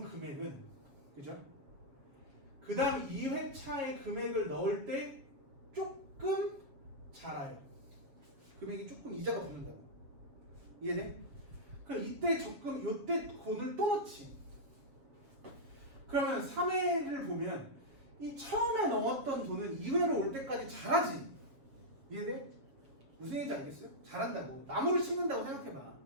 금액은, 그죠? 그 다음 2회차에 금액을 넣을 때 조금 자라요. 금액이 조금 이자가 붙는다고. 이해돼? 그럼 이때 적금, 요때 돈을 또 넣지. 그러면 3회를 보면 이 처음에 넣었던 돈은 2회로 올 때까지 자라지. 이해돼? 무슨 얘기인지 알겠어요? 자란다고. 나무를 심는다고 생각해봐.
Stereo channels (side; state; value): left; late; 7.3 ms